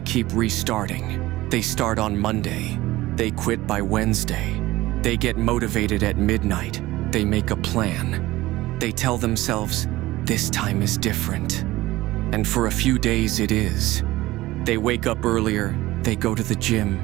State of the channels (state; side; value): quieter; left; 17.8 dB